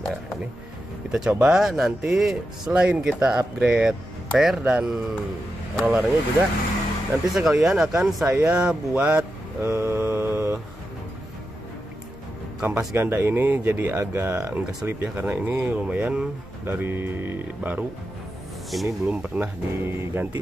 ini kita coba nanti selain kita upgrade per dan rollernya juga nanti sekalian akan saya buat kampas ganda ini jadi agak enggak selip ya, karena ini lumayan dari baru, ini belum pernah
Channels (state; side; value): normal; both; correlation 0.89